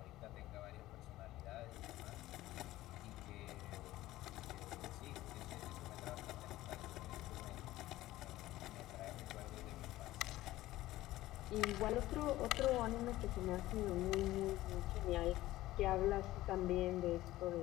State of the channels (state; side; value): quieter; right; 16.2 dB